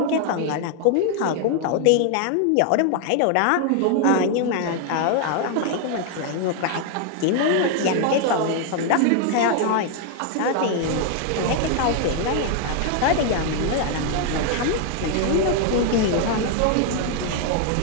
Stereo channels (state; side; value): different; both; correlation 0.00